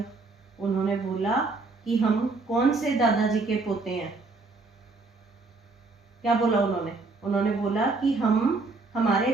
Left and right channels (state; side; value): quieter; left; 3.7 dB